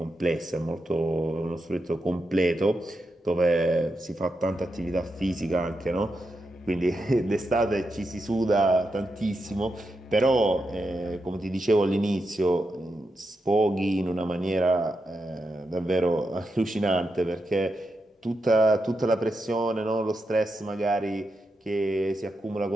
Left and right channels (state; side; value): normal; both; correlation 0.86